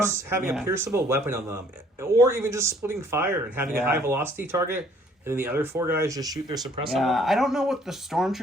having a pierceable weapon on them, or even just splitting fire and having a high velocity target, and then the other 4 guys just shoot their suppressor. Yeah, I don't know what the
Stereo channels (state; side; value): normal; both; correlation 0.60